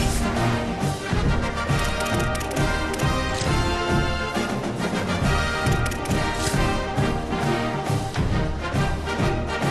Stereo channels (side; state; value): both; identical; correlation 1.00